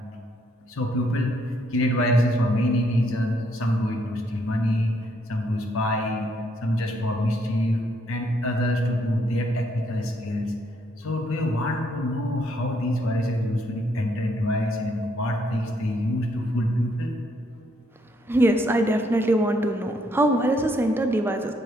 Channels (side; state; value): both; normal; correlation 0.72